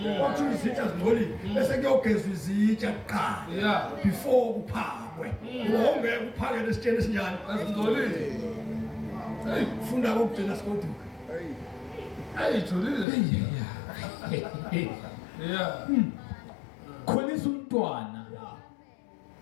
Akuthiwa izitsha zingcolile. Bese kuyogezwa izitsha kuqala. Yeah. Before kuphakwe. Ungeke uphake lesitsheni esinjani. Azingcolile. Funda kokugcina sikoduka. Ayijulile. Yeah. Khulisa umntwana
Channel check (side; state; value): right; drops out; at 13.1 s